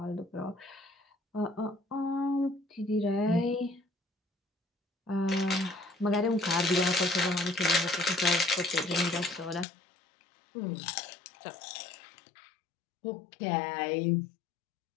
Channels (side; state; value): right; drops out; at 9.7 s